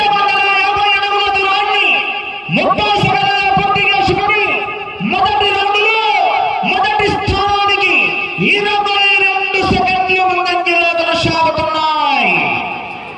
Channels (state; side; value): identical; both; correlation 1.00